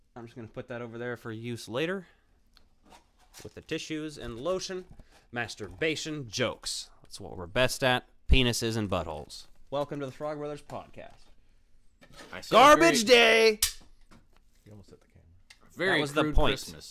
I'm just going to put that over there for use later. With the tissues and lotion. Masturbation jokes. That's what we're best at. Penises and buttholes. Welcome to the Frog Brothers podcast. Garbage day! You almost hit the camera. Very that was the crude point.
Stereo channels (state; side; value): identical; both; correlation 1.00